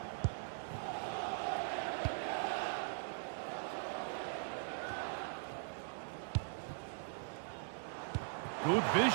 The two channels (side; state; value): left; silent; digital silence